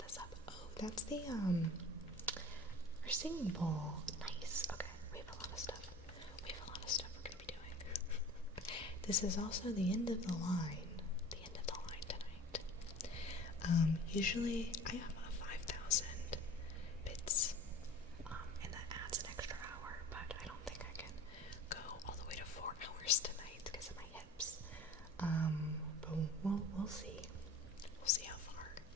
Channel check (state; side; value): normal; both; correlation 0.42